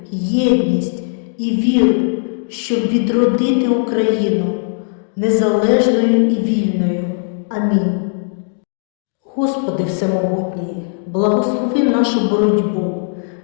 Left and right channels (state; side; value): silent; right; digital silence